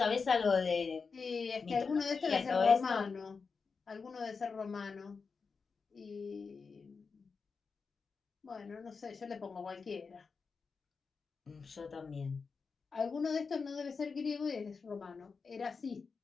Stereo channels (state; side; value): quieter; right; 5.0 dB